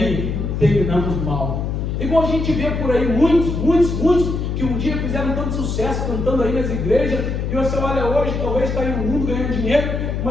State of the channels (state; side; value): noise; left; hum, 2 dB below the sound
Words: terminamos mal. Igual a gente vê por aí muitos que um dia fizeram tanto sucesso cantando aí nas igrejas, e você olha hoje, talvez está aí no mundo ganhando dinheiro,